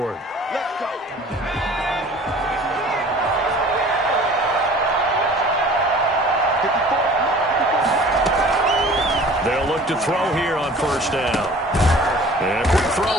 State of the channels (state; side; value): normal; both; correlation 0.46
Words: Let's go. They'll look to throw here on 1st down. And a quick